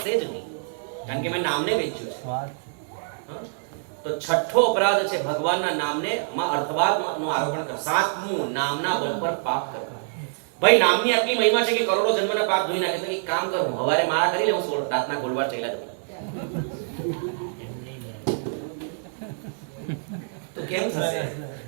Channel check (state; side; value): silent; left; 61 dB below the other